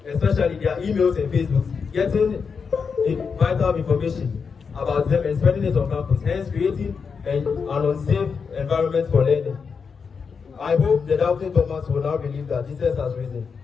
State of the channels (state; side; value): quieter; right; 5.7 dB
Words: especially their emails and Facebooks, getting vital information about them and spreading it on campus, hence creating an unsafe environment for learning. I hope the doubting Thomas will now believe that Jesus has risen.